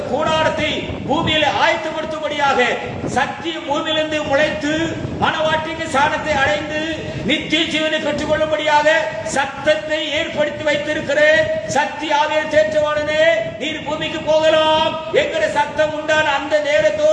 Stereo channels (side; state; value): both; identical; correlation 1.00